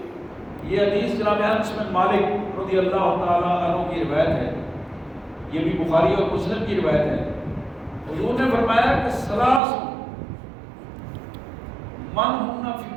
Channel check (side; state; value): left; drops out; at 9.6 s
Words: یہ حدیث جناب انس بن مالک رضی اللہ تعالیٰ عنہ کی روایت ہے، یہ بھی بخاری اور مسلم کی روایت ہے. حضور نے فرمایا کہ ثلاث من ہن